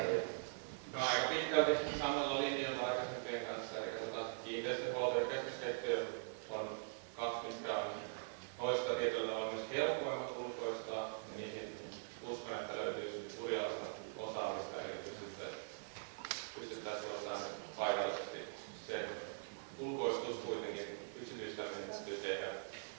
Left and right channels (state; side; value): silent; left; digital silence